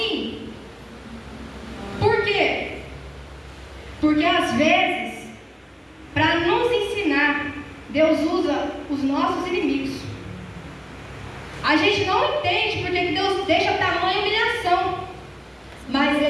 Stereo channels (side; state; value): both; identical; correlation 1.00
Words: Por quê? Porque às vezes, para nos ensinar, Deus usa os nossos inimigos. A gente não entende porque Deus deixa tamanha humilhação, mas